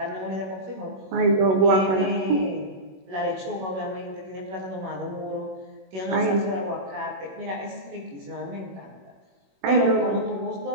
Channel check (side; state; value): left; late; 21 ms